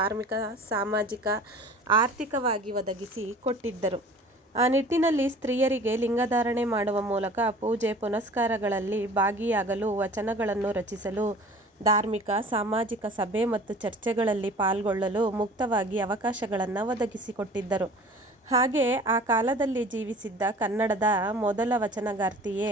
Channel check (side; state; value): both; normal; correlation 0.45